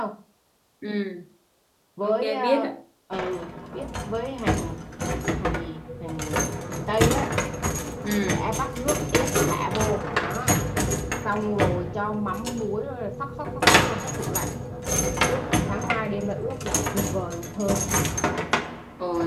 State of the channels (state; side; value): identical; both; correlation 1.00